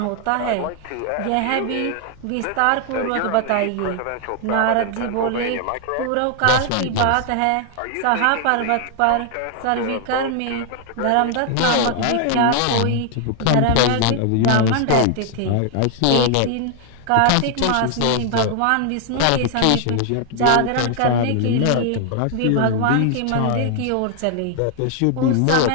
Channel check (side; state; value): both; different; correlation 0.00